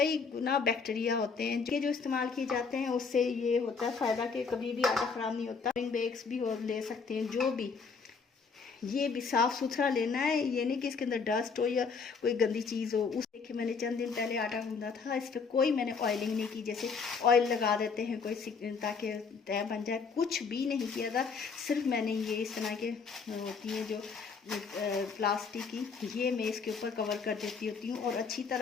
गुना बैक्टीरिया होते हैं जो इस्तेमाल किए जाते हैं। उससे ये होता है फ़ायदा कि कभी भी आटा ख़राब नहीं होता। बैग्स भी और ले सकते हैं, जो भी, ये भी साफ़ सुथरा लेना है, ये नहीं कि इसके अंदर डस्ट हो या कोई गंदी चीज़ हो। उस देखिए मैंने चंद दिन पहले आटा गूंदा था, इस पर कोई मैंने ऑयलिंग नहीं की, जैसे ऑयल लगा देते हैं कोई ताकि तय बन जाए, कुछ भी नहीं किया था। सिर्फ मैंने ये इस तरह के होती है जो प्लास्टिक की, ये मैं इसके ऊपर कवर कर देती होती हूँ और अच्छी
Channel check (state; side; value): quieter; right; 5.2 dB